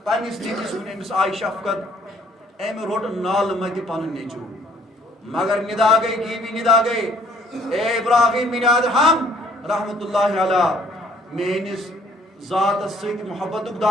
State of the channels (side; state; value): both; normal; correlation 0.60